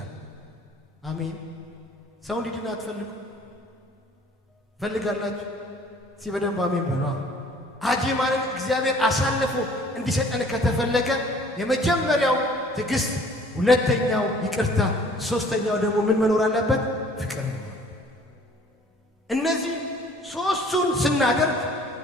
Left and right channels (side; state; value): both; normal; correlation 0.53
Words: አሜን። ሰው እንዲድን አትፈልጉ? ፈልጋላችሁ? በደንብ አሜን በሉ። አጅማንን እግዚአብሔር አሳልፎ እንዲሰጠን ከተፈለገ የመጀመሪያው ትዕግስት፣ ሁለተኛው ይቅርታ፣ ሶስተኛው ደግሞ ምን መኖር አለበት? ፍቅር። እነዚህ ሶስቱን ስናደርግ